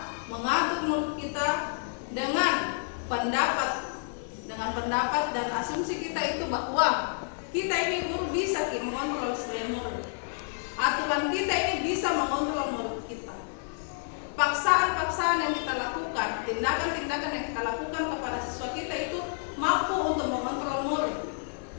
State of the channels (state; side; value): silent; right; digital silence